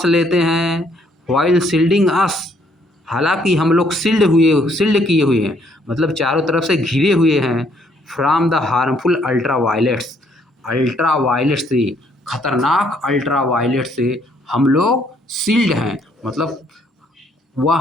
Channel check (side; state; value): both; normal; correlation 0.67